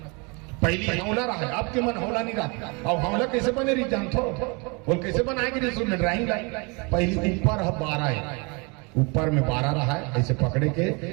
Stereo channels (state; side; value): quieter; left; 30.5 dB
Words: हौला रहा है, अब के मन हौला नहीं रहा। और हौला कैसे बने रही जानते हो, बोल कैसे बनाएगी रसोई में ड्राइंग पहली ऊपर 12 है, ऊपर में 12 रहा है ऐसे पकड़े के